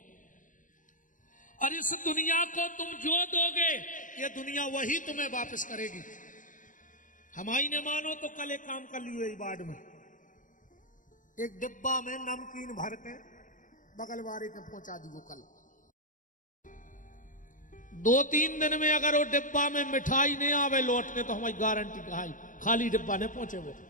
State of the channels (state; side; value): late; right; 0.38 ms